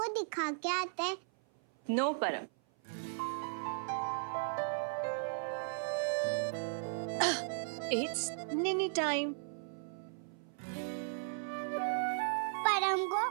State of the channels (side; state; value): left; silent; 54 dB below the other